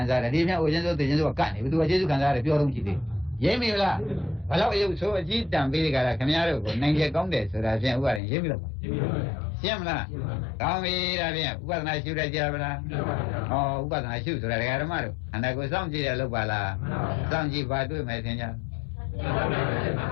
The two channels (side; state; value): right; drops out; at 8.2 s